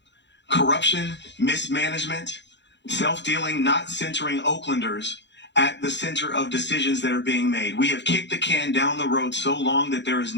corruption, mismanagement, self-dealing, not centering Oaklanders at the center of decisions that are being made. We have kicked the can down the road so long that there is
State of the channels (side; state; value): right; late; 0.52 ms